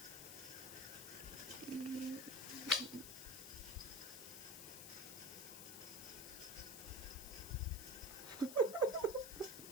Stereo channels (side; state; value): left; noise; hiss, 9 dB below the sound